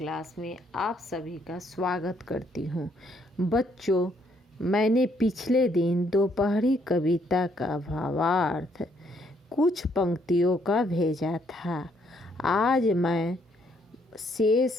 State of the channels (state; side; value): normal; both; correlation 0.70